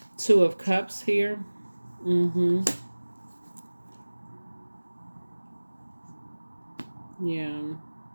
Two of Cups here. Yeah.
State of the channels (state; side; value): inverted; both; correlation -1.00